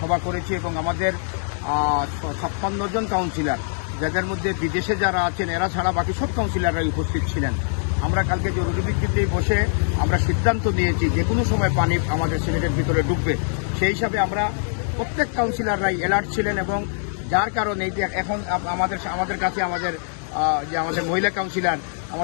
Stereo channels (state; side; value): silent; right; digital silence